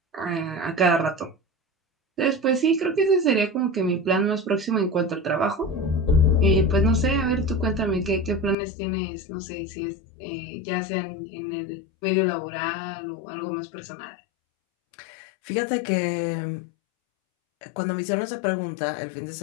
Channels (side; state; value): right; drops out; at 8.6 s